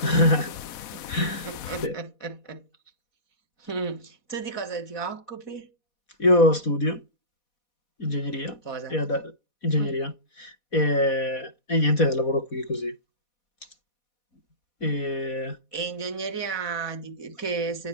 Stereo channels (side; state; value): right; late; 4.1 ms